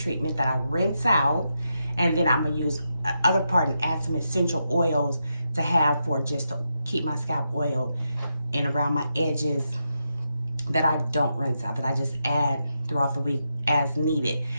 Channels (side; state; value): both; inverted; correlation -0.85